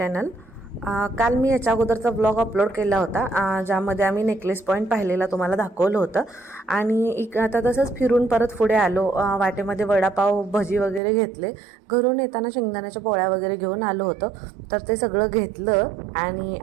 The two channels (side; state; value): left; drops out; at 11.0 s